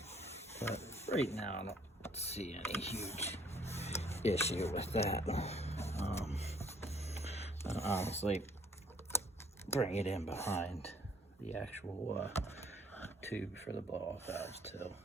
But right now, I don't see any huge issue with that. I'll honestly bring it in behind the actual tube for the blow-off valves too,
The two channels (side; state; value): both; normal; correlation 0.61